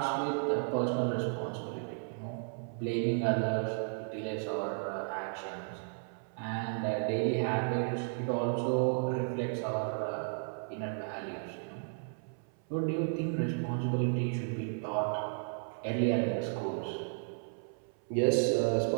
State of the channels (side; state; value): left; silent; 55 dB below the other